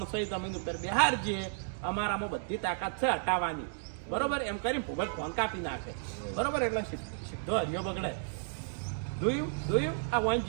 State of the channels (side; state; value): left; silent; digital silence